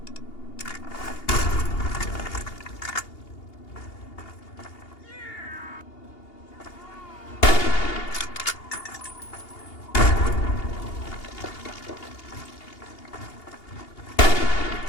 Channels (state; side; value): late; right; 2.8 ms